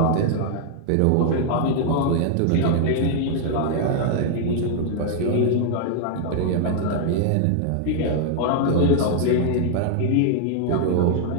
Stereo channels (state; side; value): different; both; correlation 0.00